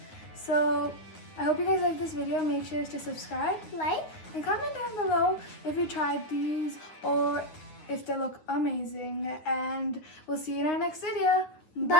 So I hope you guys like this video. Make sure to subscribe, Like, and comment down below if you tried these or if they look amazing. And we'll see you in our next video.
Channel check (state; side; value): late; right; 9.5 ms